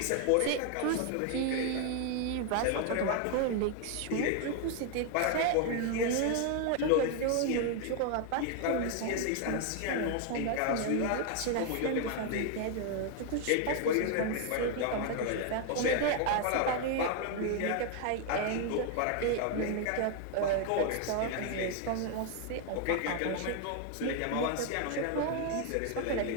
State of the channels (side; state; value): both; different; correlation 0.00